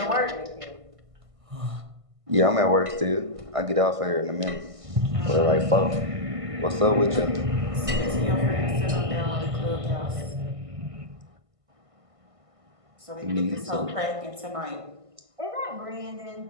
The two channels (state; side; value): late; left; 1.5 ms